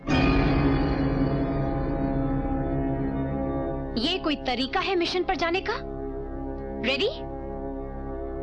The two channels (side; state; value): both; identical; correlation 1.00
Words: ये कोई तरीका है मिशन पर जाने का? रेडी?